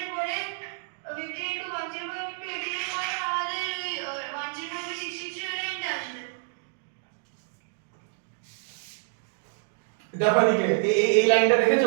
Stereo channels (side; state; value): left; silent; digital silence